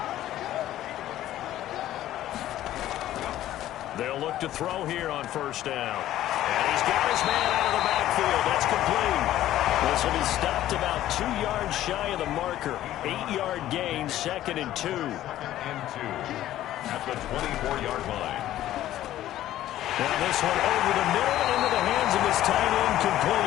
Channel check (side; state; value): right; quieter; 13.5 dB